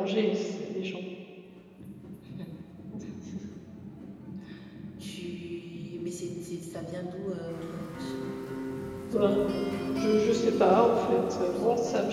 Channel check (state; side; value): identical; both; correlation 1.00